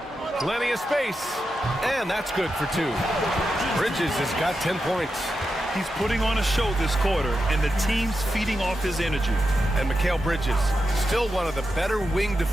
Plenty of space. And that's good for 2. Bridges has got 10 points. He's putting on a show this quarter, and the team's feeding off his energy. And Mikal Bridges, still one of the better wing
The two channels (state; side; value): normal; both; correlation 0.88